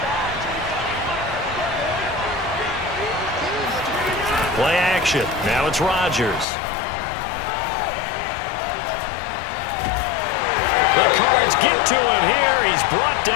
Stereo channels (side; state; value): right; drops out; at 6.5 s